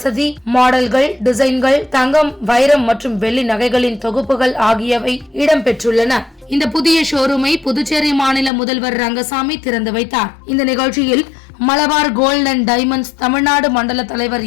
மாடல்கள், டிசைன்கள், தங்கம், வைரம் மற்றும் வெள்ளி நகைகளின் தொகுப்புகள் ஆகியவை இடம்பெற்றுள்ளன. இந்த புதிய ஷோரூமை புதுச்சேரி மாநில முதல்வர் ரங்கசாமி திறந்து வைத்தார். இந்த நிகழ்ச்சியில் Malabar gold and diamonds Tamil Nadu மண்டல தலைவர்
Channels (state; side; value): drops out; right; at 8.5 s